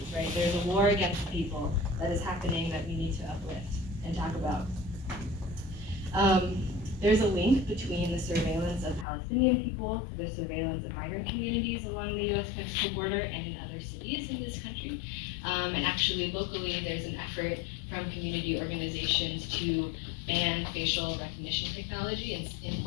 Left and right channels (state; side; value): drops out; right; at 9.1 s